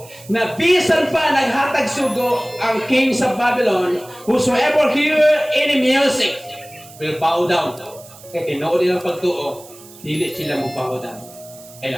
na bisan pa naghatag sugo ang king sa Babylon, whosoever hear any music will bow down. Kaya tinuod nilang pagtuo, dili sila mo bow down.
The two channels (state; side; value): noise; right; hiss, 21 dB below the sound